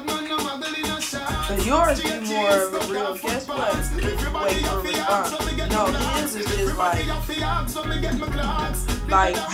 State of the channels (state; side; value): identical; both; correlation 1.00